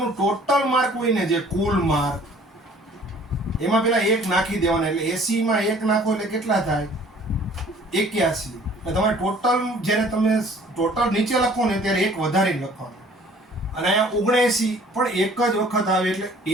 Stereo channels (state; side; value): normal; both; correlation 0.53